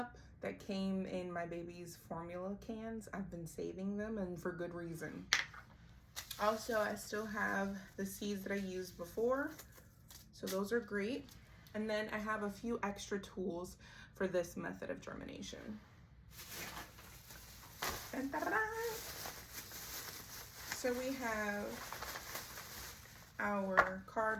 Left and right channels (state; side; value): identical; both; correlation 1.00